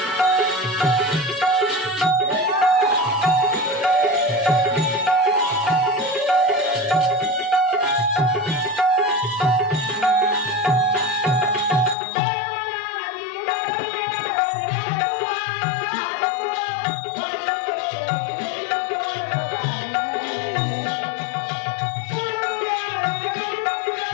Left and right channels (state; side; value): drops out; right; at 12.0 s